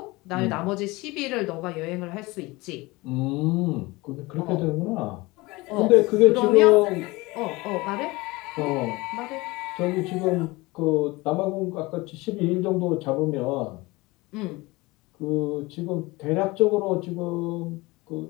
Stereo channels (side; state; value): right; quieter; 22.4 dB